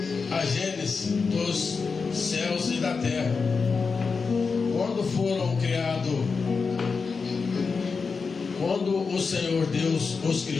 a gênese dos céus e da terra. Quando foram criados, quando o Senhor Deus os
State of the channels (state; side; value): quieter; right; 4.9 dB